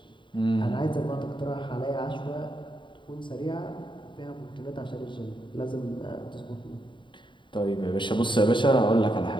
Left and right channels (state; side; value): late; right; 0.23 ms